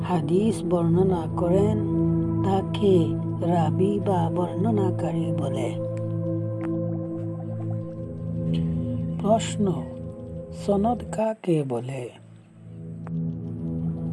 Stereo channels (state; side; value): identical; both; correlation 1.00